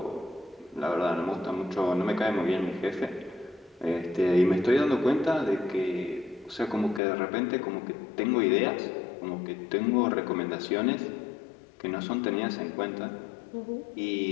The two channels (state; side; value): drops out; right; at 7.0 s